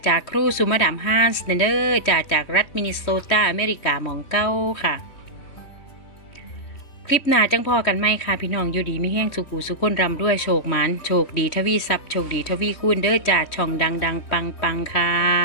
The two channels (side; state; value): right; late; 3.1 ms